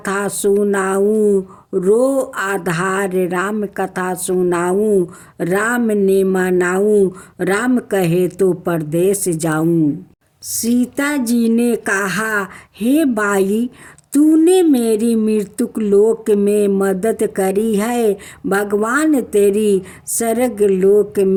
सुनाऊं, रो आधार राम कथा सुनाऊं। राम ने मनाऊं, राम कहे तो परदेश जाऊं। सीता जी ने कहा, हे बाई तूने मेरी मृत्यु लोक में मदद करी है, भगवान तेरी स्वर्ग लोक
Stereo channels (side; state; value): both; identical; correlation 1.00